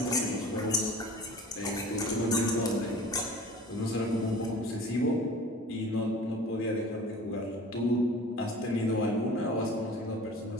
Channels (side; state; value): both; normal; correlation 0.42